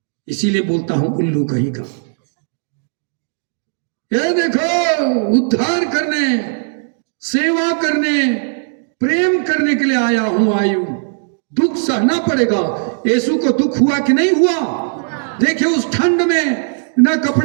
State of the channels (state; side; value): silent; left; 67 dB below the other